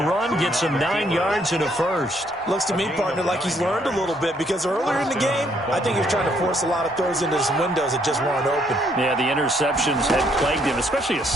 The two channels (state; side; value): normal; both; correlation 0.69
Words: run, get some 9 yards and a first. Looks to me, partner, like he's learned a little bit because earlier in the game, I think he was trying to force a lot of throws into some windows that just weren't open. Yeah, the interceptions had plagued him, especially a